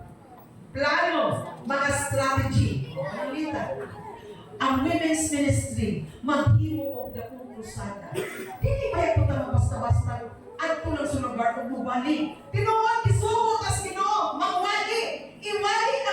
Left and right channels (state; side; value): identical; both; correlation 1.00